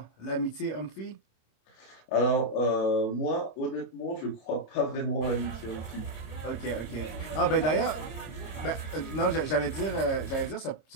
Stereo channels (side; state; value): right; late; 26 ms